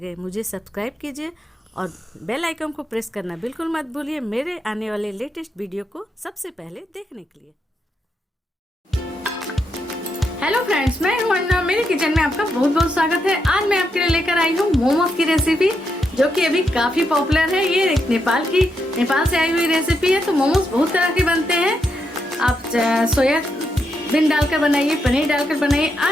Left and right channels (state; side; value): normal; both; correlation 0.81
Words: मुझे सब्सक्राइब कीजिए और बेल आइकन को प्रेस करना बिल्कुल मत भूलिए मेरे आने वाले लेटेस्ट वीडियो को सबसे पहले देखने के लिए। हेलो फ्रेंड्स, मैं हूं अन्ना। मेरे किचन में आपका बहुत बहुत स्वागत है। आज मैं आपके लिए लेकर आई हूं मोमोज की रेसिपी, जो कि अभी काफी पॉपुलर है। ये एक नेपाल से आई हुई रेसिपी है। तो मोमोज बहुत तरह के बनते हैं। आप सोयाबीन डालकर बनाइए, पनीर डालकर बनाइए।